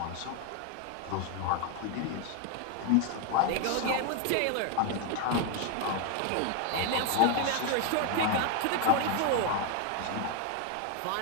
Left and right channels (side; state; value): both; different; correlation 0.01